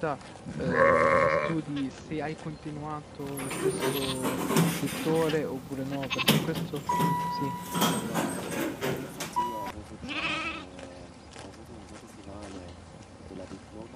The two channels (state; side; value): identical; both; correlation 1.00